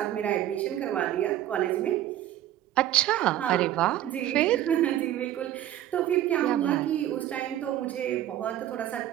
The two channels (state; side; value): quieter; left; 12.5 dB